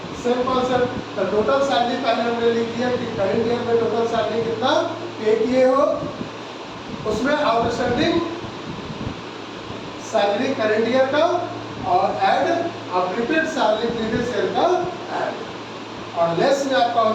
Same concept. तो टोटल सैलरी पहले हमने लिख दिया कि करंट ईयर में टोटल सैलरी कितना पे किए हो, उसमें आउटस्टैंडिंग सैलरी करंट ईयर का और ऐड और प्रीपेड सैलरी प्रीवियस ईयर का ऐड। और लेस में आपका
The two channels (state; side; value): identical; both; correlation 1.00